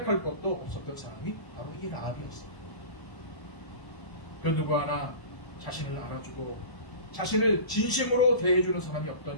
것도 없었던 사람이 바로 이 라합이었어요. 그 누구 하나 자신을 알아주고 자신을 진심으로 대해주는 사람이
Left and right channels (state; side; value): late; right; 1.0 ms